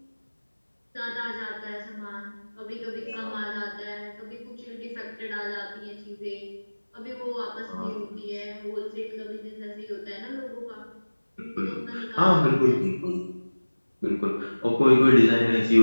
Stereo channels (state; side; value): inverted; both; correlation -1.00